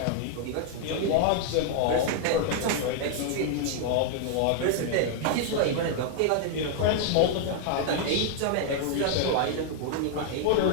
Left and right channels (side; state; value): both; different; correlation 0.00